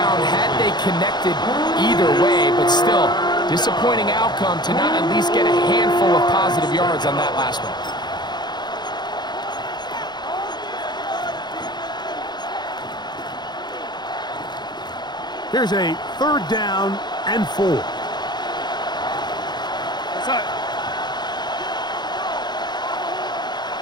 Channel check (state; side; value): late; right; 0.21 ms